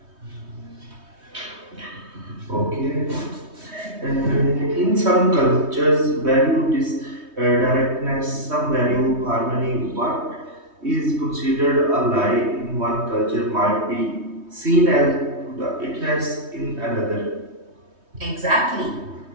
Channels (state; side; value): late; left; 3.2 ms